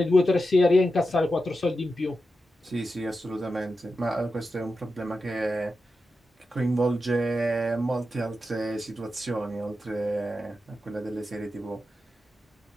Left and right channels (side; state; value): both; normal; correlation 0.90